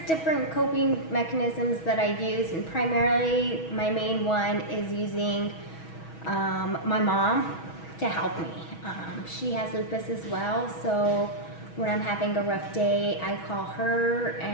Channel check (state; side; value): late; right; 6.2 ms